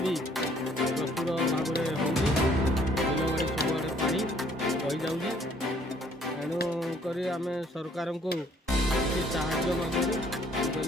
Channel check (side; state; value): both; normal; correlation 0.62